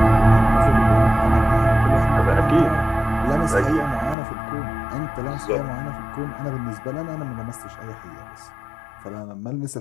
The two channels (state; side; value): drops out; right; at 4.2 s